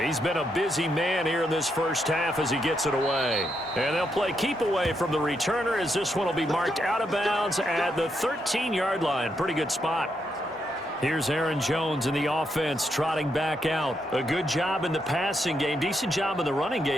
He's been a busy man here in this first half as he gets it away. And they'll play keep away from the returner as this one will be marked out of bounds at the 13-yard line. Pretty good spot. Here's Aaron Jones in the offense trotting back out. A good job in the passing game. Decent job in the running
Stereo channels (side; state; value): both; normal; correlation 0.80